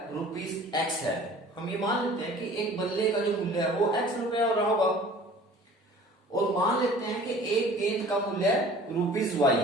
₹X है। हम ये मान लेते हैं कि एक बल्ले का जो मूल्य है वो X रुपया हो रहा होगा, और मान लेते हैं कि एक गेंद का मूल्य ₹Y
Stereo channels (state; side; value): normal; both; correlation 0.47